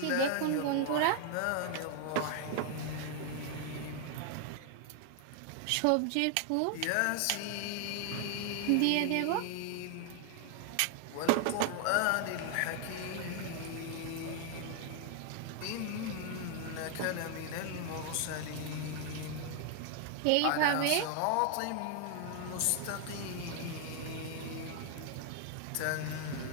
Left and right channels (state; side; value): different; both; correlation 0.00